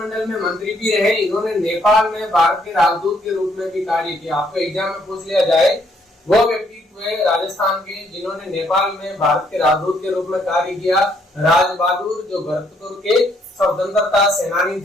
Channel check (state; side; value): normal; both; correlation 0.69